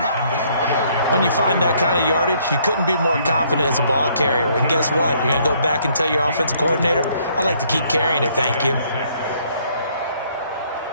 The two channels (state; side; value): inverted; both; correlation -0.65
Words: When you find that kind of yardage, you couldn't be more confident as a ball carrier. And guess what? You're going to go back and tell your offensive coordinator, I'd like to keep carrying it, thank you.